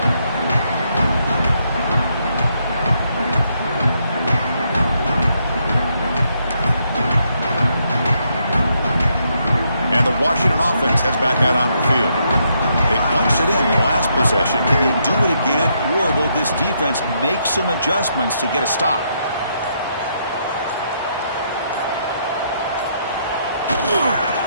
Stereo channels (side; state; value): both; inverted; correlation -0.76